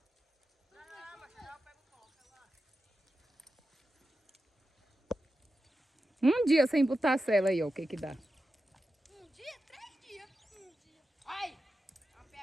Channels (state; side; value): normal; both; correlation 0.91